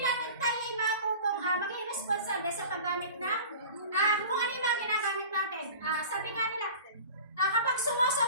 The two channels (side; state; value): both; inverted; correlation -0.39